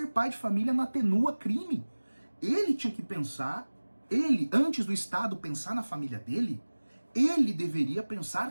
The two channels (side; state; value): both; inverted; correlation -1.00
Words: pai de família não atenua crime. Ele tinha que pensar, antes do Estado pensar na família dele, ele deveria